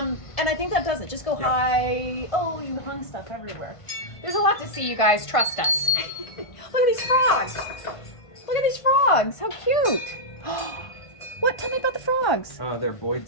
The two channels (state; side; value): late; right; 1.5 ms